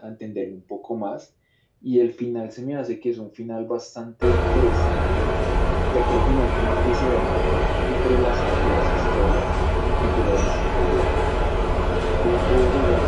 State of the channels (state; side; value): identical; both; correlation 1.00